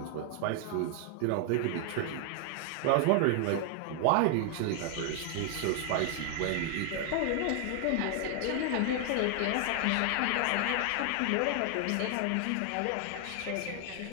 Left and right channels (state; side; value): different; both; correlation 0.00